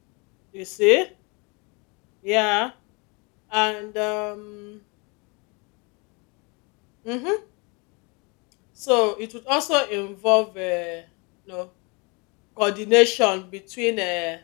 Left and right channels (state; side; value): quieter; right; 30.0 dB